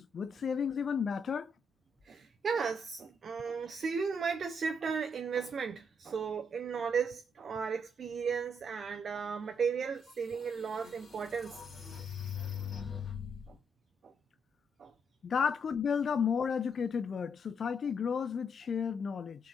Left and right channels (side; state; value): both; normal; correlation 0.75